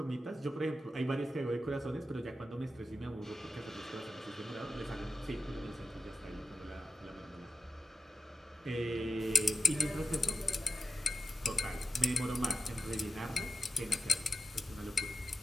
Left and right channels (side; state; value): both; normal; correlation 0.92